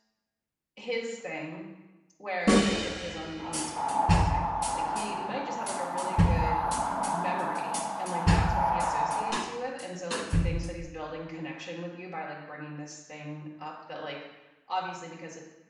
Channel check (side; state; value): both; identical; correlation 1.00